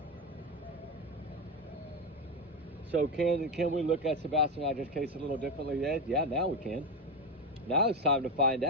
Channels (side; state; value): both; normal; correlation 0.11